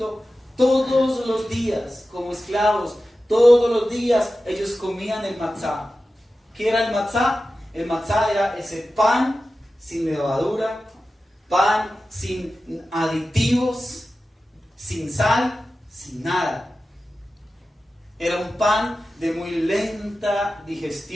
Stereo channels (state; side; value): normal; both; correlation 0.94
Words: todos los días, como esclavos, todos los días ellos comían el matzá. ¿Qué era el matzá? El matzá era ese pan sin levadura, pan sin aditivos, sin sal, sin nada. Era un pan de muy lenta